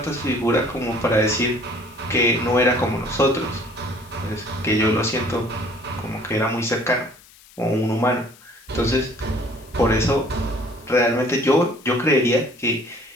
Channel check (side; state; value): left; noise; hiss, 25 dB below the sound